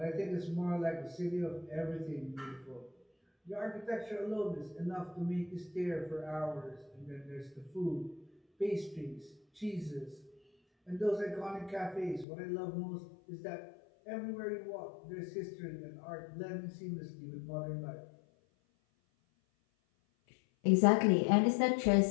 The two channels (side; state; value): right; drops out; at 12.2 s